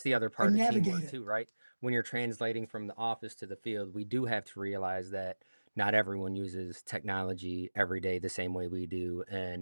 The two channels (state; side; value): inverted; both; correlation -1.00